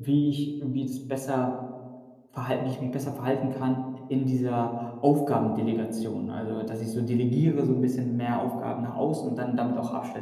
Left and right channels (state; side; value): identical; both; correlation 1.00